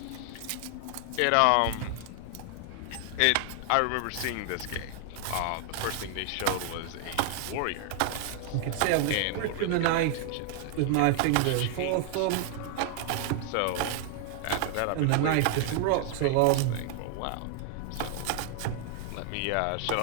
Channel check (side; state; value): both; different; correlation 0.00